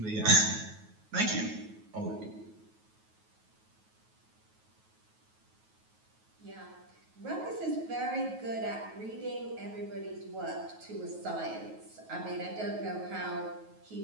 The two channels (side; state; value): left; late; 9.3 ms